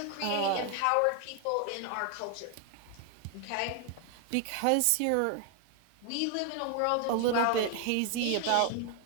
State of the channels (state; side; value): different; both; correlation 0.00